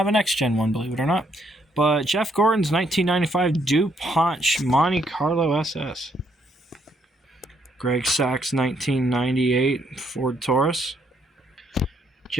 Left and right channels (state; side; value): normal; both; correlation 0.72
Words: a next-gen one, believe it or not. But Jeff Gordon's 1995 DuPont Monte Carlo SS. Greg Sachs' 1998 Ford Taurus.